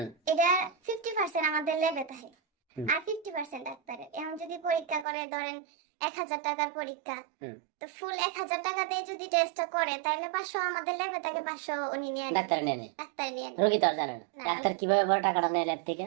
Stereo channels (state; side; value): drops out; left; at 5.1 s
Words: এটা 50% আমাদের ল্যাবে থাকে হুম আর 50% ডাক্তারের। এখন যদি পরীক্ষা করে ধরেন 1,000 টাকার পরীক্ষা, হুম তো ফুল 1,000 টাকা দিয়ে যদি টেস্টটা করে তাহলে 500 আমাদের ল্যাবে থাকে, 500 উনি নিয়ে নেন, ডাক্তার নেয় নি? ডাক্তার নিয়ে নেন। রোগী তো আর জানে না না, ডাক্তার কিভাবে বড় টাকাটা নেয় ল্যাব থেকে।